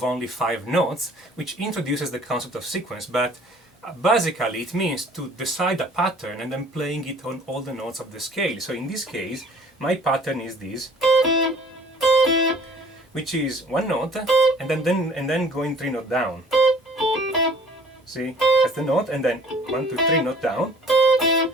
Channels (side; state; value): both; normal; correlation 0.52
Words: only 5 notes, which introduces the concept of sequence, but basically it means to decide a pattern and then playing it on all the notes of the scale. So in this case, my pattern is this, which is 1 note and then going 3 notes down. See, that's the note, and then 1, 2, 3 note down.